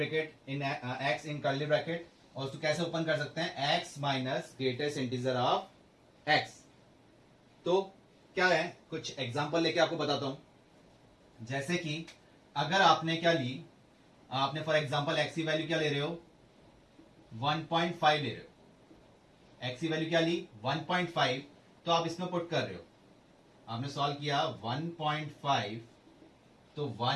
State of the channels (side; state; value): both; identical; correlation 1.00